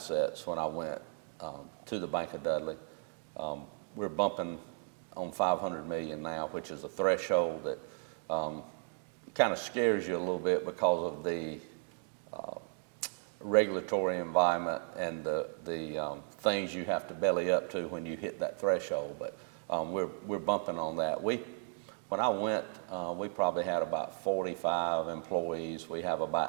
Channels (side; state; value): left; silent; 54 dB below the other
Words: when I went to the Bank of Dudley. We're bumping on $500 million now, which is a threshold that kind of scares you a little bit because of the regulatory environment and the things you have to belly up to when you hit that threshold. But we're bumping on that. When I went, we probably had about 45 employees. We have